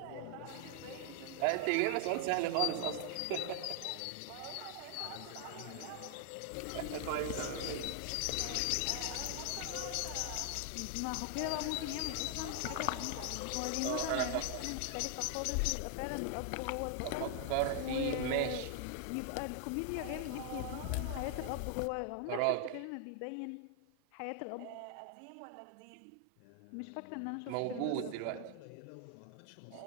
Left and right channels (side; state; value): both; different; correlation 0.00